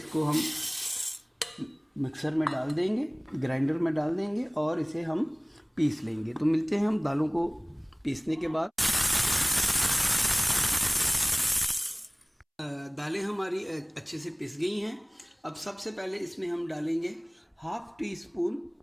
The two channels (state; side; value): identical; both; correlation 1.00